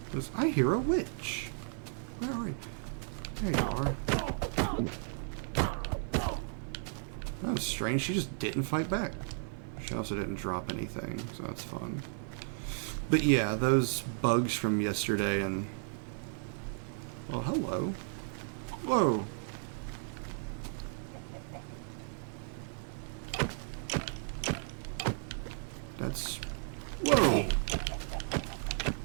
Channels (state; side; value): silent; left; digital silence